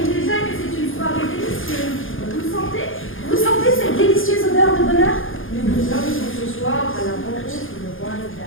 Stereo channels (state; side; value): late; right; 0.59 ms